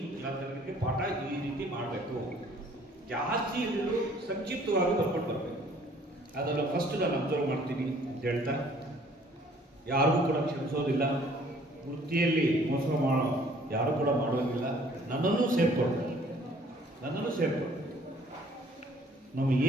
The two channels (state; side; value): normal; both; correlation 0.57